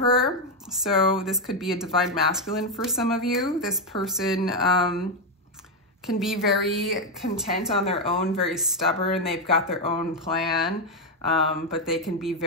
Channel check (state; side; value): normal; both; correlation 0.05